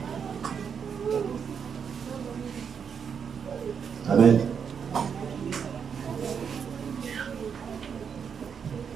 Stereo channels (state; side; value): quieter; left; 7.0 dB